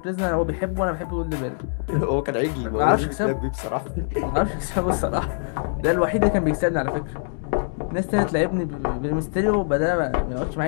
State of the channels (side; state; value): right; silent; digital silence